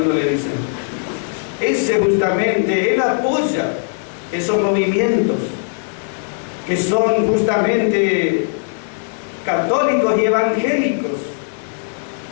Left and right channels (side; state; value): right; silent; digital silence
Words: le dicen. Ese justamente, él apoya esos movimientos que son justamente católicos y evangélicos.